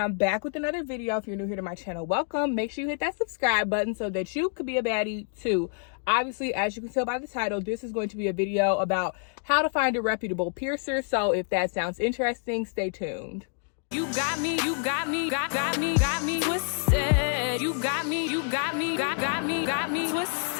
back with another video. If you're new here to my channel, welcome. Make sure you hit that subscribe button so that you could be a baddie too. Obviously, as you can tell by the title, this is going to be a video about how to find a reputable piercer. So if that sounds interesting, stay tuned. You got me twisted. You got me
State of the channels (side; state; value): right; silent; 55 dB below the other